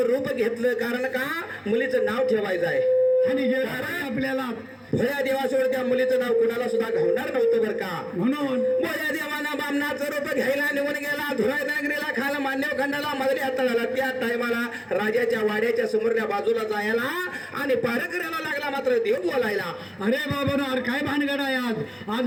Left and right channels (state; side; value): identical; both; correlation 1.00